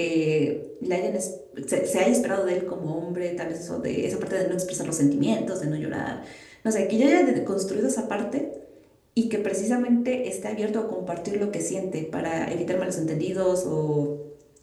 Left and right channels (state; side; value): identical; both; correlation 1.00